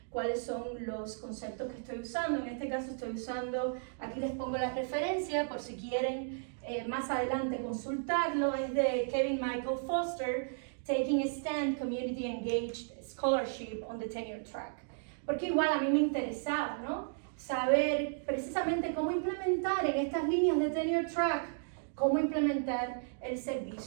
cuáles son los conceptos que estoy usando. En este caso estoy usando, aquí les pongo la referencia por si quieren más adelante consultarlo, es de Kevin Michael Foster, Taking a Stand, Community Engaged Scholarship on the Tenure Track. Porque igual a mí me interesaba, ¿no? Saber precisamente cómo implementar en estas líneas de Tenure Track, cómo implementar el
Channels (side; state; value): left; silent; digital silence